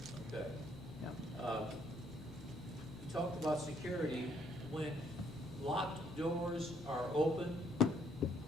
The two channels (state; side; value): normal; both; correlation 0.68